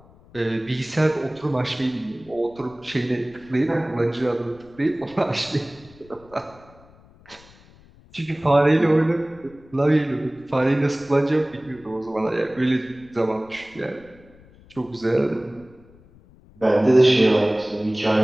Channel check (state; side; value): noise; left; rumble, 25 dB below the sound